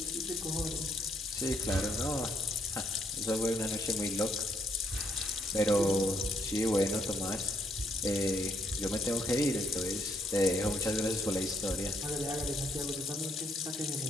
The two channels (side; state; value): both; normal; correlation 0.72